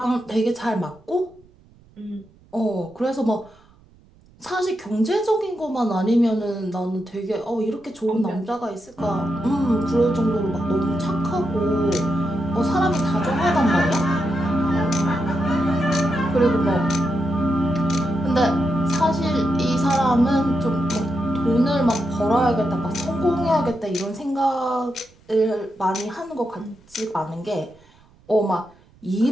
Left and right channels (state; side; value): noise; right; rumble, 29 dB below the sound